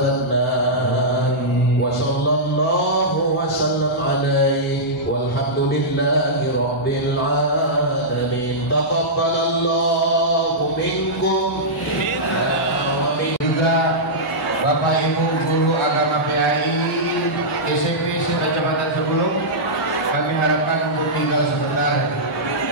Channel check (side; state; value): both; normal; correlation -0.12